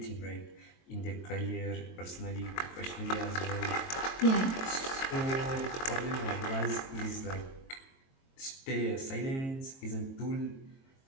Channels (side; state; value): right; late; 22 ms